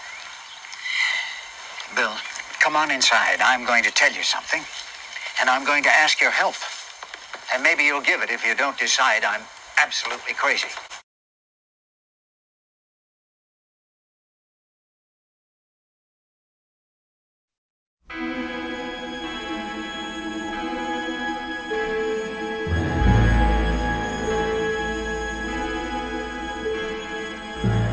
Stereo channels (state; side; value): identical; both; correlation 1.00